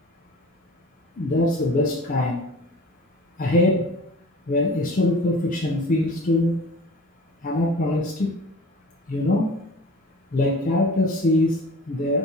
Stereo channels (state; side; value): normal; both; correlation 0.42